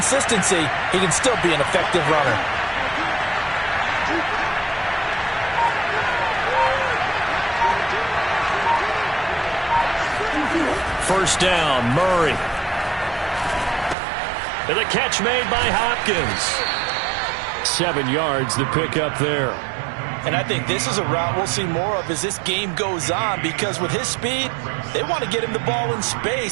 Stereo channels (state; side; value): drops out; left; at 14.0 s